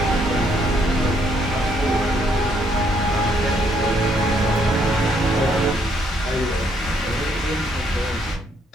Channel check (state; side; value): normal; both; correlation 0.70